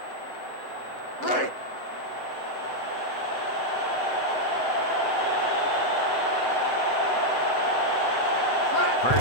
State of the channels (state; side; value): late; right; 7.9 ms